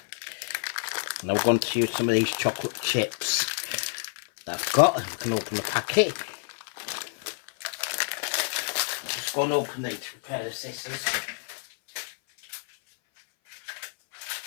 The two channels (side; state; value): right; silent; 57 dB below the other